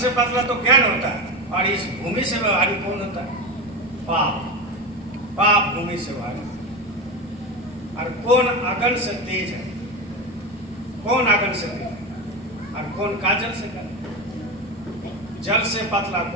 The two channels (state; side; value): normal; both; correlation 0.20